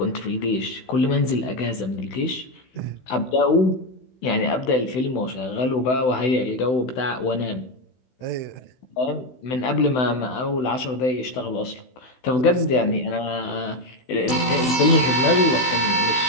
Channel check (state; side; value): late; right; 16 ms